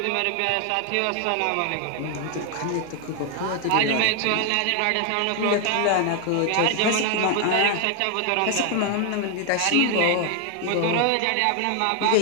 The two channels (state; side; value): different; both; correlation 0.00